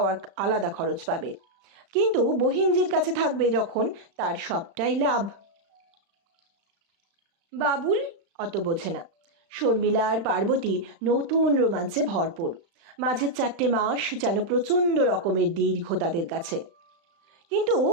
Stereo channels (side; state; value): left; late; 35 ms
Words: আলাদা খরচ পাবে। কিন্তু বহিঞ্জির কাছে থাকবে যখন, তার সবটাই লাভ। বাবুল অত বোঝে না। শর্মিলা আর পার্বতী নতুন রোমাঞ্চে ভরপুর। মাঝের 4টে মাস যেন প্রচন্ড রকমের দীর্ঘ তাদের কাছে। কিন্তু